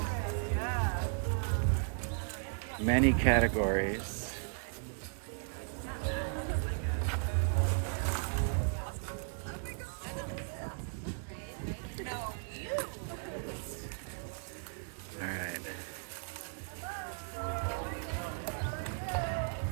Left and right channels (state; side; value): silent; left; 54 dB below the other